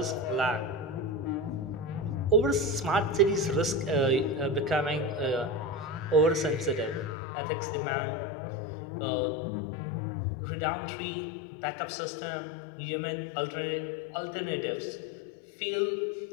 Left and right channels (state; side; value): drops out; right; at 7.2 s